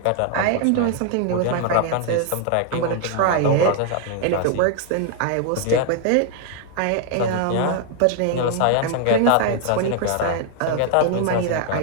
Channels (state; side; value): different; both; correlation 0.00